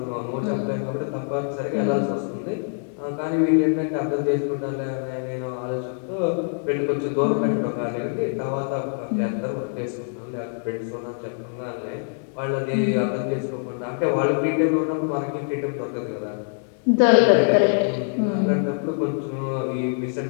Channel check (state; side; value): silent; right; digital silence